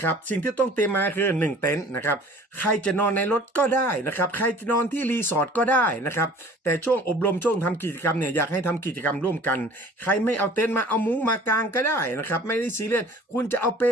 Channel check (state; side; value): normal; both; correlation 0.48